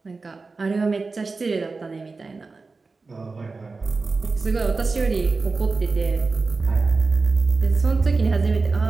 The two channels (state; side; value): quieter; left; 4.0 dB